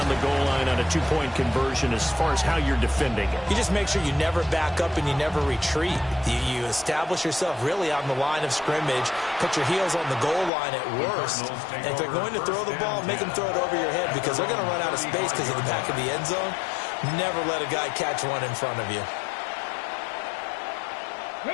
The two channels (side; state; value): right; drops out; at 10.5 s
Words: the goal line on a 2-point conversion as far as how you're defending it? You just make sure you never back up and you never retreat. You establish yourself really on the line of scrimmage, put your heels on the goal line at worst. And if they're going to throw the ball, make them throw it over your head because they're going to run out of space because of the back of the end zone. Never let a guy catch one in front of you.